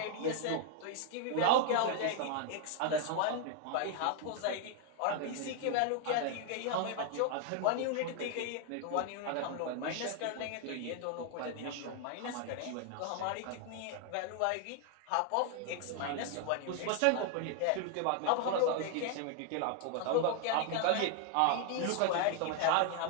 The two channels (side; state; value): both; different; correlation 0.00